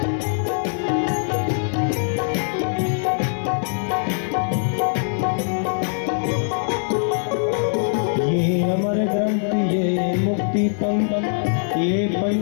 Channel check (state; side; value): silent; right; 59 dB below the other